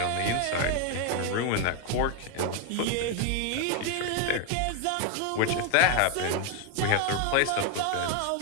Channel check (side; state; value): both; different; correlation 0.01